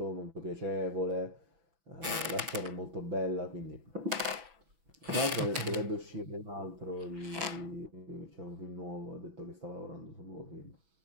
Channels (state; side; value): late; left; 6.1 ms